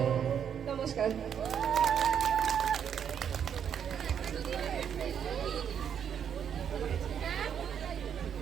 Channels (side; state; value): left; quieter; 8.2 dB